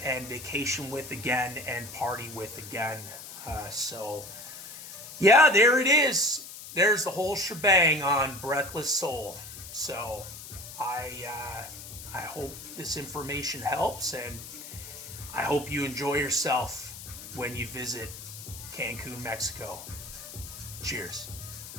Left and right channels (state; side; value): noise; left; hiss, 12 dB below the sound